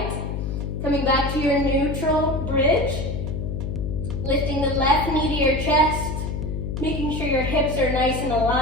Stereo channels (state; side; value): noise; left; hum, 3 dB below the sound